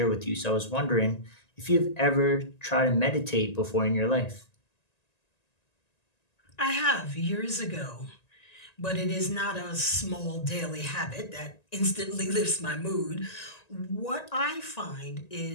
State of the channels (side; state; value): right; late; 1.9 ms